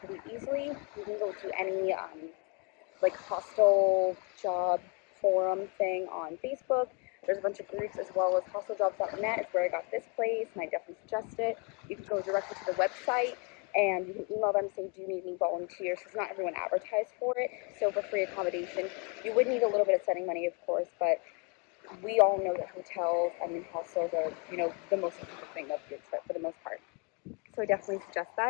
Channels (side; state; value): right; quieter; 32.1 dB